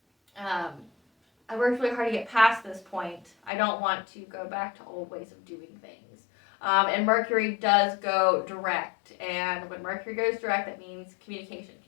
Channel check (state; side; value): drops out; right; at 3.5 s